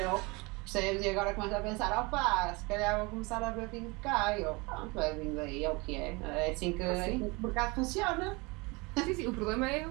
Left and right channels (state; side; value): quieter; left; 26.4 dB